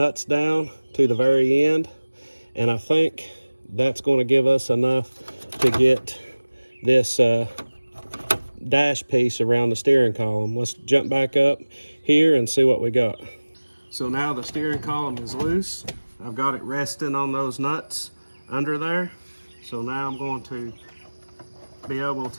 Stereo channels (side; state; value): both; inverted; correlation -1.00